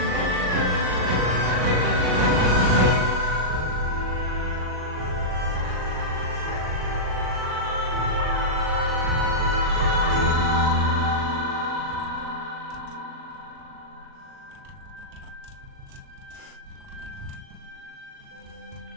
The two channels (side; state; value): left; late; 39 ms